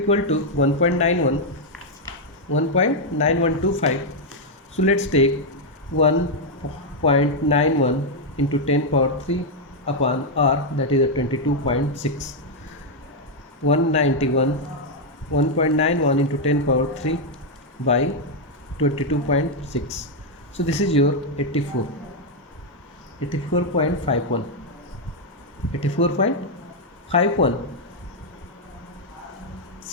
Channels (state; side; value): normal; both; correlation 0.00